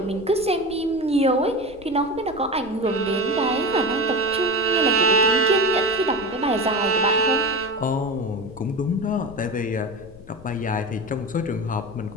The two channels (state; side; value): noise; left; rumble, 21 dB below the sound